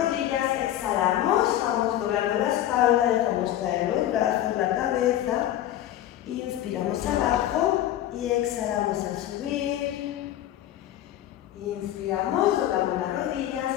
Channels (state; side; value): quieter; right; 12.6 dB